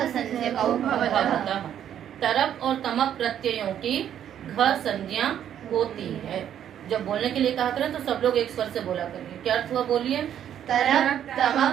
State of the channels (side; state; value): left; quieter; 10.0 dB